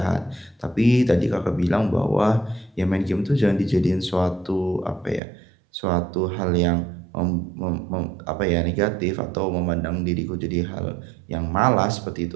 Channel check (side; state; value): left; drops out; at 5.2 s